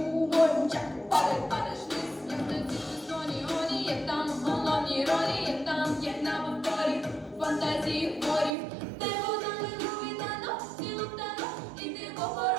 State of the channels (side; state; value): left; drops out; at 8.6 s